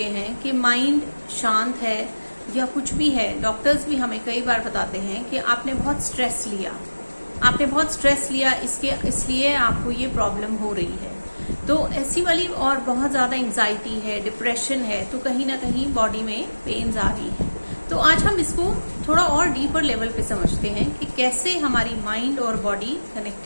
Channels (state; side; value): inverted; both; correlation -1.00